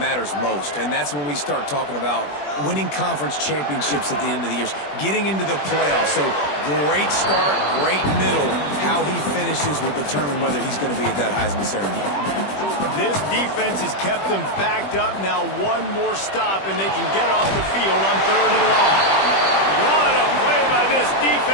most. And that's when we start talking about winning conference championships at the end of the years, getting into the playoffs. So great start, great middle. How he finishes will determine whether he's going to be at that Heisman ceremony. This defense has kept them backed up. Now one more stop, and they can get off the field on 3rd and long. What a play by this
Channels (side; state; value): right; late; 21 ms